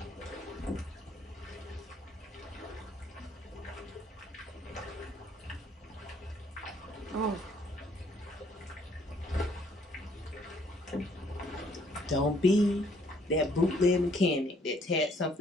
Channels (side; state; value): both; normal; correlation 0.64